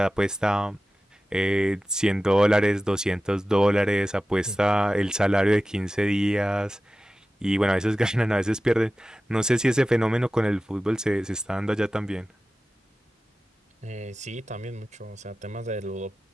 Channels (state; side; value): normal; both; correlation 0.95